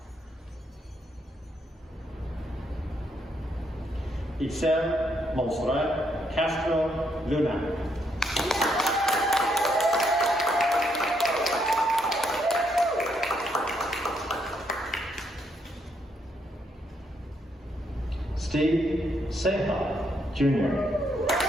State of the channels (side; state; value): both; normal; correlation 0.75